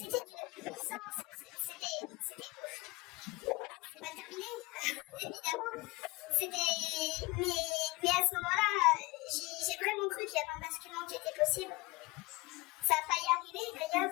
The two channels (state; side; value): quieter; right; 23.3 dB